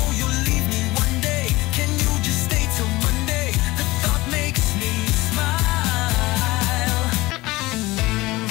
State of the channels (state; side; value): quieter; right; 20.2 dB